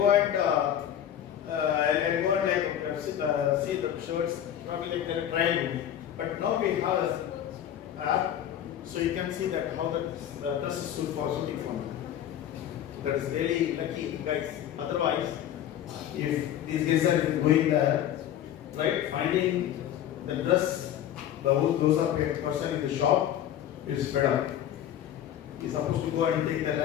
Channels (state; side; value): quieter; right; 10.7 dB